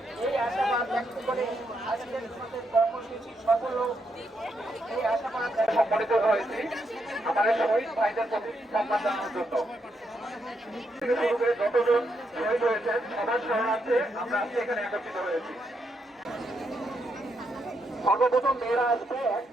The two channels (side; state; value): both; normal; correlation 0.79